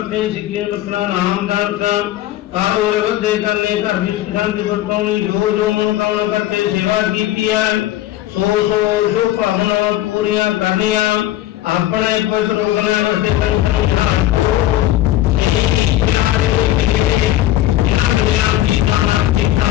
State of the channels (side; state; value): right; quieter; 14.2 dB